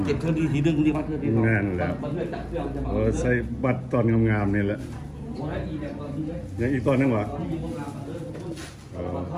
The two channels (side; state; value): both; identical; correlation 1.00